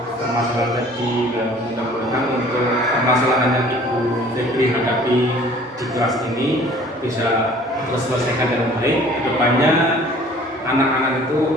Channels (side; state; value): both; normal; correlation 0.51